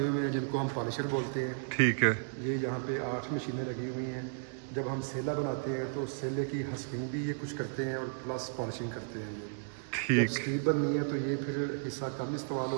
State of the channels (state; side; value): silent; left; digital silence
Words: हुए हैं जिनको हम पॉलिशर बोलते हैं। ठीक है। ये यहाँ पे 8 मशीनें लगी हुई हैं। जब हम सेला बनाते हैं तो सेले की हस्किंग भी ये कुछ करते हैं और प्लस पॉलिशिंग करते हैं। ठीक। स्टीप बननी है तो ये फिर हिस्सा कम इस्तेमाल